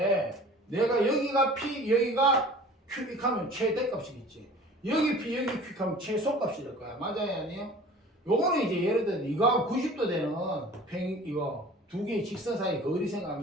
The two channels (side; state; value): both; normal; correlation 0.44